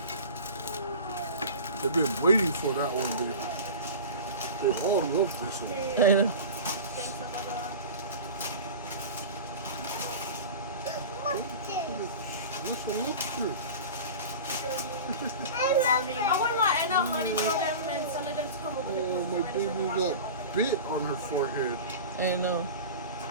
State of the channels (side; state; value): both; inverted; correlation -0.33